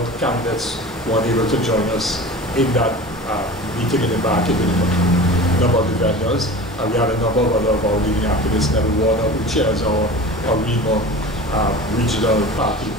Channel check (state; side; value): normal; both; correlation 0.36